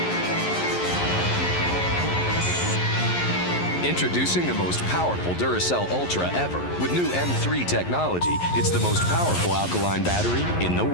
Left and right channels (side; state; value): right; late; 11 ms